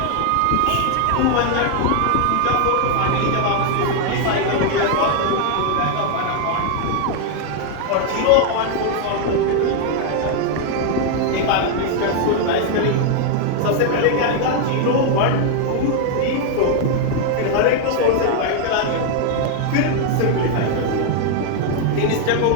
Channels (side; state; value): both; different; correlation 0.00